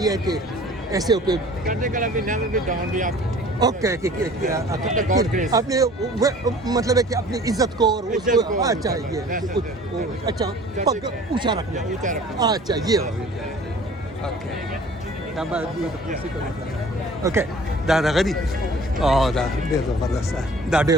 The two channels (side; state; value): both; normal; correlation 0.48